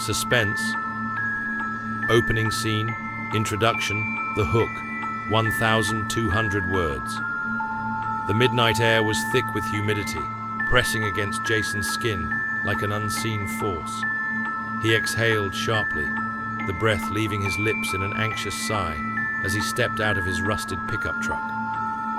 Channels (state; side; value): identical; both; correlation 1.00